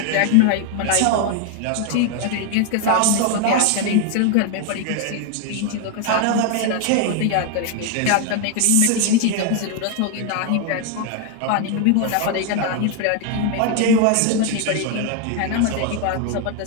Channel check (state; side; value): different; both; correlation 0.01